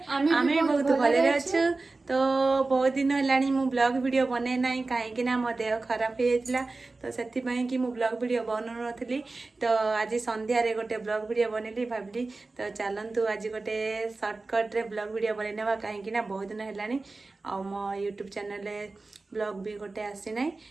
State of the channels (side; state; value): left; quieter; 3.5 dB